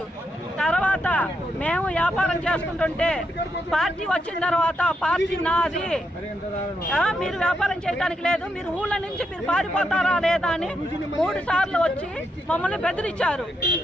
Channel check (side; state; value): both; normal; correlation 0.81